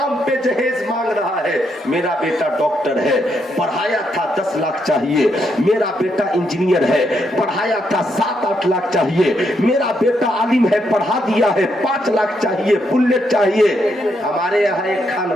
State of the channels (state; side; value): normal; both; correlation 0.78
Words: पे जहेज मांग रहा है। मेरा बेटा डॉक्टर है, पढ़ाया था 10 लाख चाहिए। मेरा बेटा इंजीनियर है, पढ़ाया था 7-8 लाख चाहिए। मेरा बेटा आलिम है, पढ़ा दिया है, 5 लाख चाहिए, बुलेट चाहिए। हमारे यहाँ एक